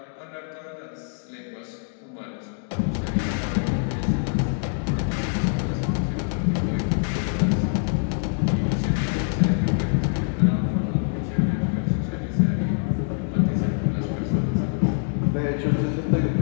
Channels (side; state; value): right; silent; 62 dB below the other